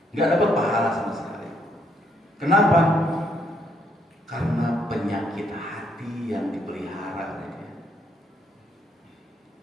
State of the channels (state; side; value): normal; both; correlation 0.72